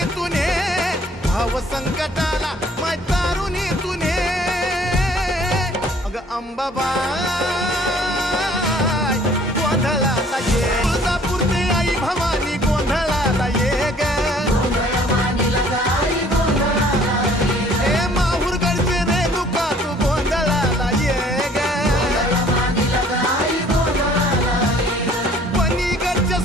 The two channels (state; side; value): normal; both; correlation 0.56